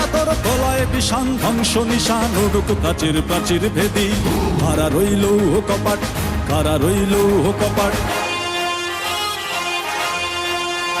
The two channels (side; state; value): both; identical; correlation 1.00